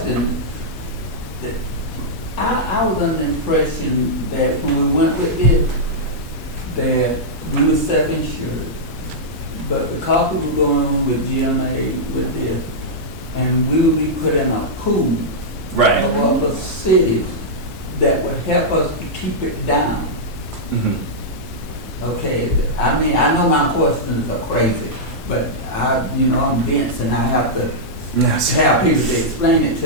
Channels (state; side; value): normal; both; correlation -0.09